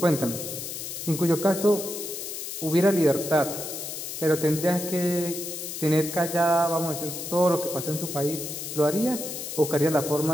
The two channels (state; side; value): noise; left; hiss, 7 dB below the sound